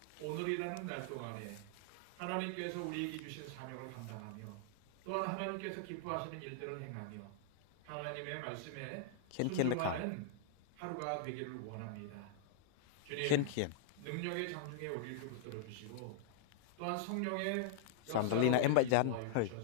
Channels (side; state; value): both; different; correlation -0.01